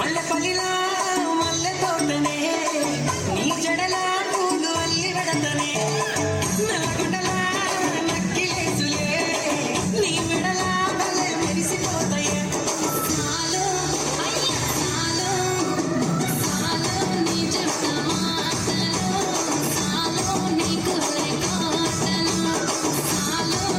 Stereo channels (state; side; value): identical; both; correlation 1.00